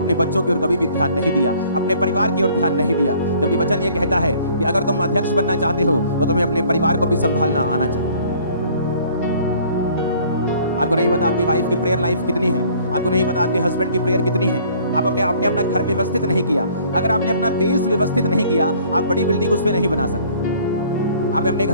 बच्चों की ओर कभी भी ध्यान नहीं दिया, अपने परिवार की ओर ध्यान नहीं दिया। जबकि वचन ये कहता है कि अगर तुम अध्यक्ष बनना चाहते हो तो तुम्हें अपने परिवार को भी संभालना आना चाहिए। आपको नहीं पता आपकी वाइफ की प्रेयर लाइफ कितनी है, आपको नहीं पता आपके हस्बैंड की प्रेयर कितनी है। आप आपने अपना घर व्यवस्थित नहीं किया। अगर आपने अपना बेस व्यवस्थित नहीं किया, आप बड़ी बिल्डिंग उस पर नहीं बना सकते। आपने अपने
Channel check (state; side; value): inverted; both; correlation -0.56